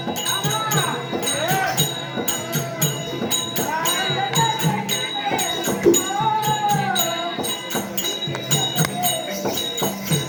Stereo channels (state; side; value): identical; both; correlation 1.00